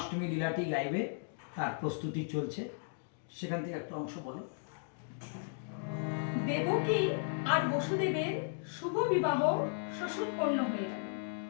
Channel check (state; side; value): silent; right; digital silence